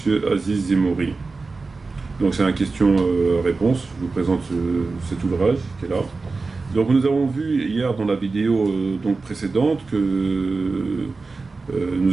Aziz Zemouri. Donc c'est un question-réponse, je vous présente cet ouvrage qui est là. Donc nous avons vu hier dans la vidéo donc précédente que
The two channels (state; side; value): quieter; left; 4.0 dB